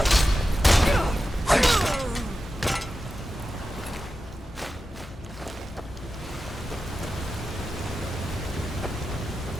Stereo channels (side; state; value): both; normal; correlation 0.92